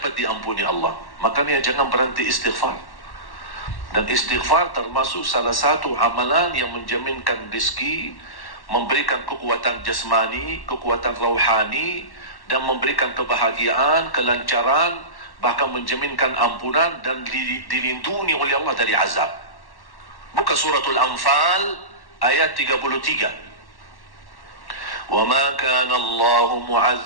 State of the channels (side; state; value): right; late; 1.1 ms